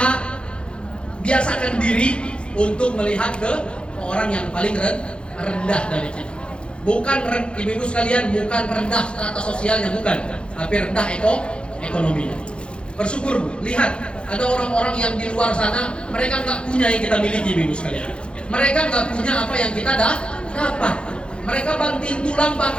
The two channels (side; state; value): right; late; 0.056 ms